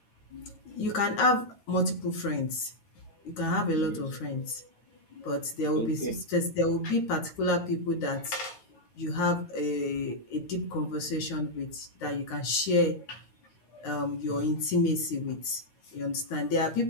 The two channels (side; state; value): right; late; 9.5 ms